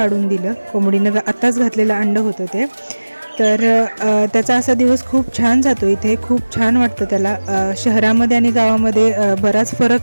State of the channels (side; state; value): both; inverted; correlation -1.00